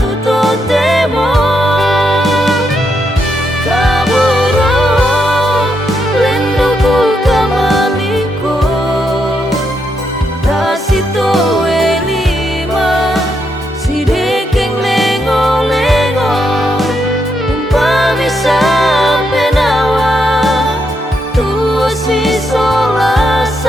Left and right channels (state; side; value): normal; both; correlation 0.80